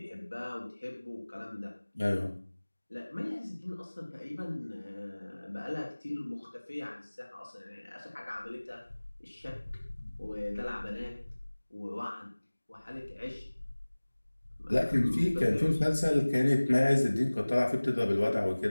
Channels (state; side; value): inverted; both; correlation -1.00